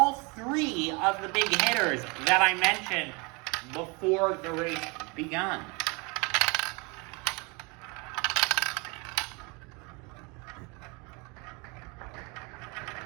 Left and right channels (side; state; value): left; quieter; 29.4 dB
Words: 3 of the big hitters that I mentioned before the race begun.